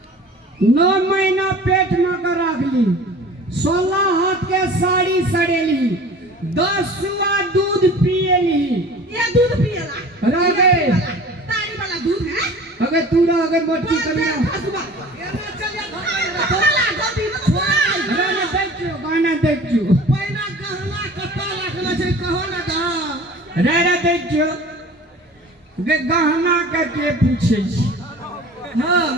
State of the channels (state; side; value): normal; both; correlation 0.43